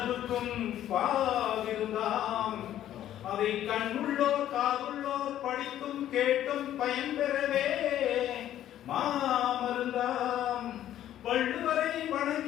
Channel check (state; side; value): quieter; right; 11.9 dB